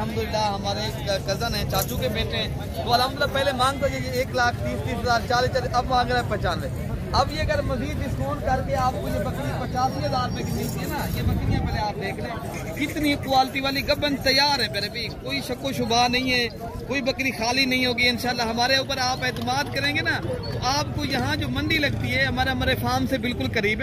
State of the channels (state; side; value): identical; both; correlation 1.00